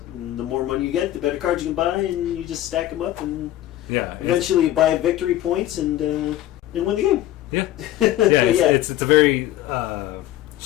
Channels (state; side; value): quieter; right; 14.0 dB